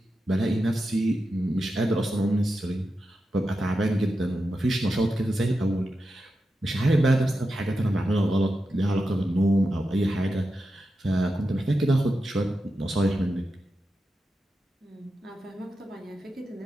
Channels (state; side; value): normal; both; correlation 0.89